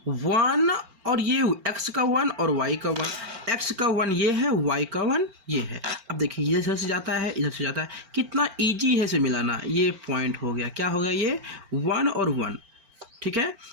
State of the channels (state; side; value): late; left; 4.4 ms